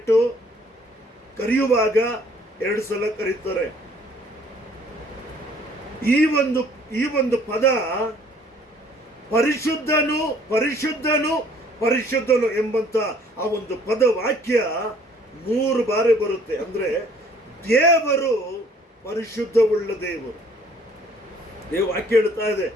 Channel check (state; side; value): normal; both; correlation 0.58